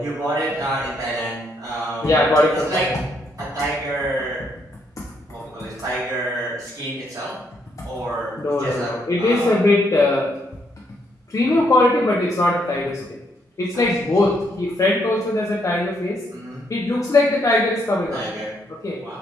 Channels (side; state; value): both; normal; correlation 0.74